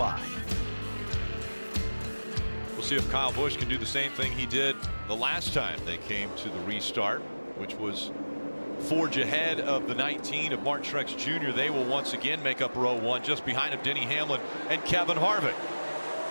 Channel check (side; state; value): both; inverted; correlation -1.00